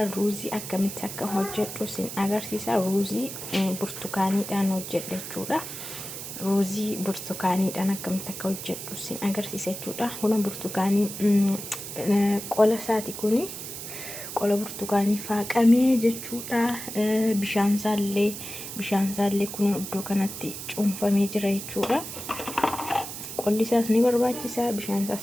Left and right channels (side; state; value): right; noise; hiss, 9 dB below the sound